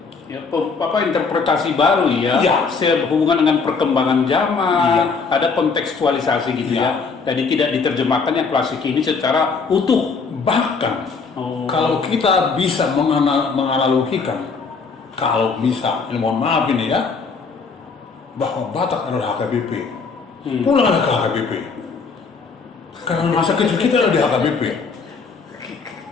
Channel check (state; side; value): quieter; right; 4.9 dB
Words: Ya, apa interpretasi baru ya, Iya. sehubungan dengan perkembangan zaman, Iya. ada kontekstualisasi gitu Iya. ya. Jadi tidak diterjemahkan yang klasik ini secara utuh. Bahkan Oh. kalau kita bisa menganalogikan, kalau bisa, ini mohon maaf ini ya, bahwa Batak adalah HKBP. Pulanglah ke HKBP. Karena masa kecil kita ada di HKBP.